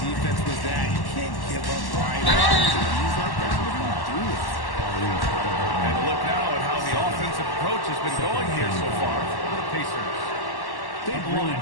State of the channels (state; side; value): late; right; 1.1 ms